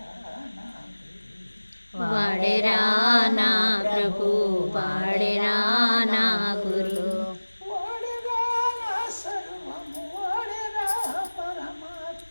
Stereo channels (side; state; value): both; inverted; correlation -1.00